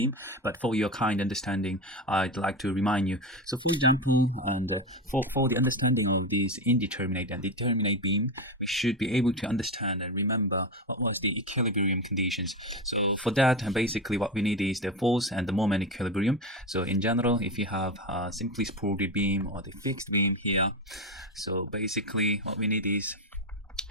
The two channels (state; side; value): normal; both; correlation 0.18